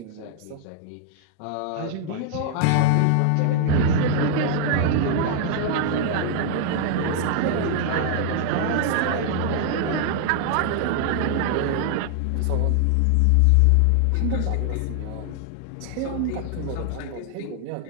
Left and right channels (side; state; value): both; different; correlation 0.00